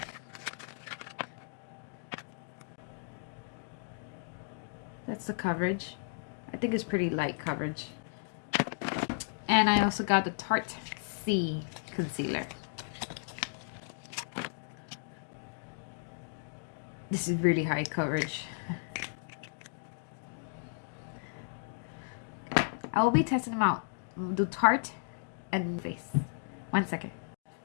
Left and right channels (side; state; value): right; silent; digital silence